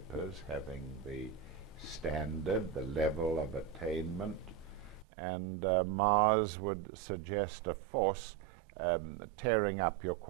having the standard, the level of attainment, and Mars would suggest a force tearing up your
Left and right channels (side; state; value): left; drops out; at 5.1 s